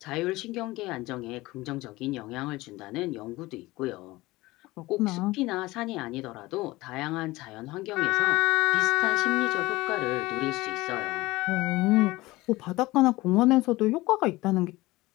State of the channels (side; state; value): right; quieter; 19.8 dB